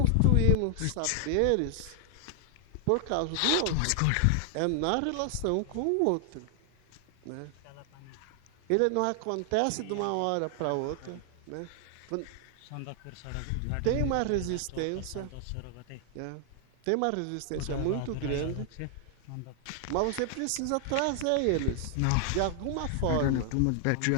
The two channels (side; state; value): both; different; correlation 0.00